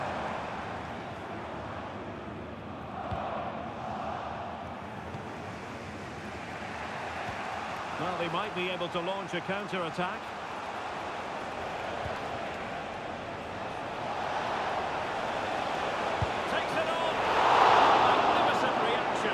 Well, they might be able to launch a counter-attack. Takes it on. Magnificent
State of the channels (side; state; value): both; identical; correlation 1.00